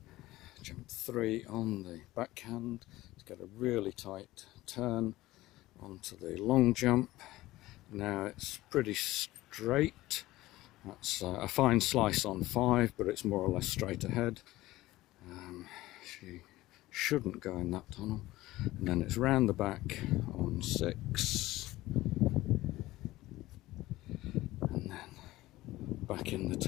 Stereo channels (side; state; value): right; quieter; 17.4 dB